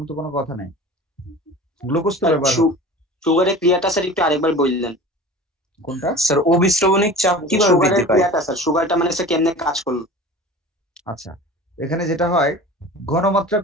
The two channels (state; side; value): normal; both; correlation 0.38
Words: তো কোনো কথা নেই, গ্লুকোজ তো ব্যবহার হবে। সুগারের ক্রিয়াটা স্যার একটু আরেকবার বললেন। কোনটা? স্যার অবিশ্রবণিক চাপ কিভাবে সুগারের বৃদ্ধি পায়? ক্রিয়াটা স্যার, সুগারটা মানে স্যার কেমনে কাজ করলো? আচ্ছা, এখানে যেটা হয়, ঘনমাত্রা